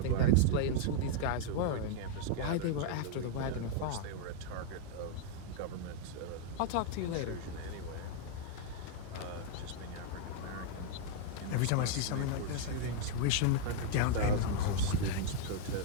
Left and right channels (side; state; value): both; different; correlation 0.00